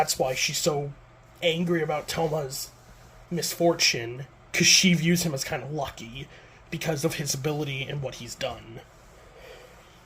why she's so angry about Toma's misfortune, because she views him as kind of lucky because of his ability and what he's done.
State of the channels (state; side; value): identical; both; correlation 1.00